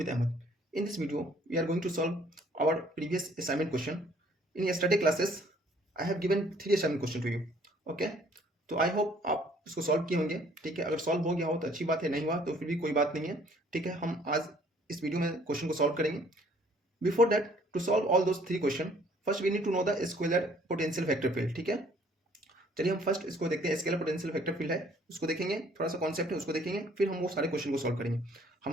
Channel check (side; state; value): both; normal; correlation 0.59